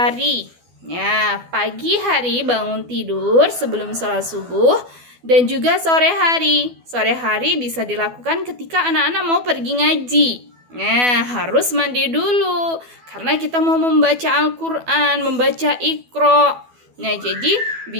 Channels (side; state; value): left; late; 12 ms